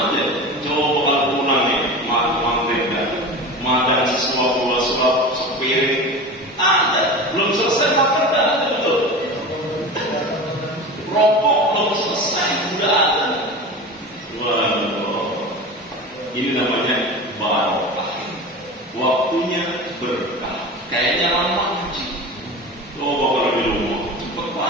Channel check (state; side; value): normal; both; correlation 0.31